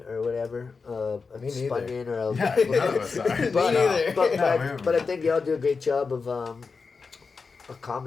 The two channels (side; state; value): right; quieter; 4.8 dB